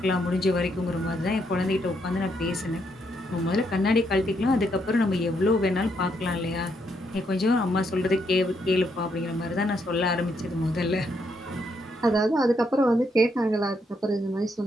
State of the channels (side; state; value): both; normal; correlation 0.76